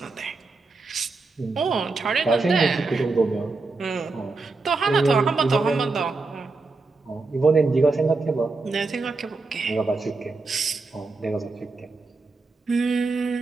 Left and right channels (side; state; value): left; quieter; 3.8 dB